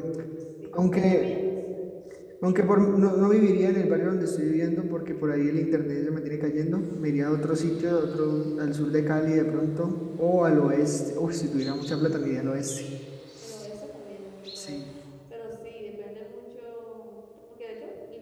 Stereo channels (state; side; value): identical; both; correlation 1.00